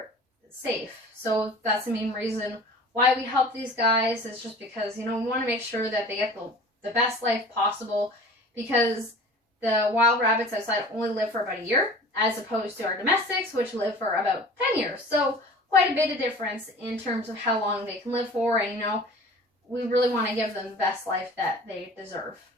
safe. So that's the main reason why we help these guys, is just because, you know, we want to make sure that they get the best life possible, because the wild rabbits outside only live for about a year, as opposed to our domestics, which live for about 10 years. So quite a bit of difference in terms of how long they can live for, and, you know, we really want to give them the best life that they deserve.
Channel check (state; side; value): normal; both; correlation 0.42